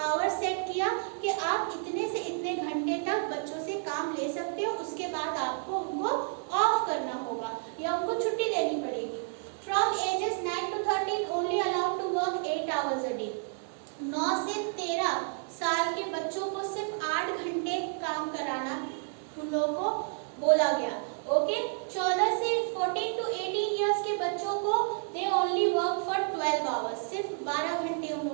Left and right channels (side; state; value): left; silent; 57 dB below the other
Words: आवर सेट किया कि आप इतने से इतने घंटे तक बच्चों से काम ले सकते हो, उसके बाद आपको उनको ऑफ करना होगा या उनको छुट्टी देनी पड़ेगी। फ्रॉम एजेस 9 to 13 only allowed to work 8 hours a day. 9 से 13 साल के बच्चों को सिर्फ 8 घंटे काम कराना उन लोगों को बोला गया, ओके। 14 से 14 to 18 इयर्स के बच्चों को they only work for 12 hours, सिर्फ 12 घंटे उन